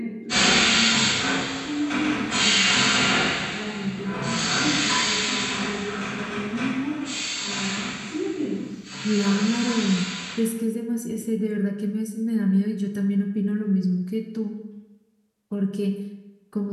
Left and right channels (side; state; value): both; identical; correlation 1.00